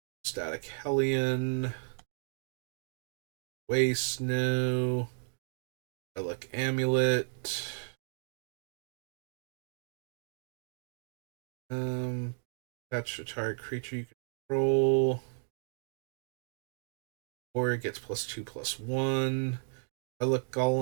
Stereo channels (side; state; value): left; silent; digital silence